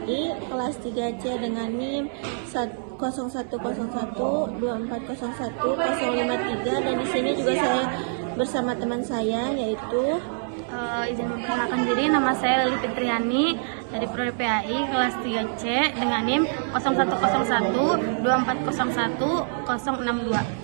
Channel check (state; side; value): silent; left; 61 dB below the other